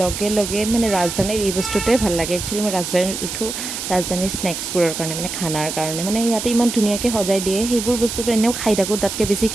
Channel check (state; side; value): noise; right; hiss, 6 dB below the sound